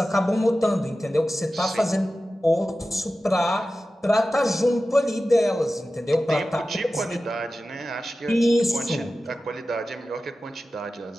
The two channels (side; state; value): both; normal; correlation 0.94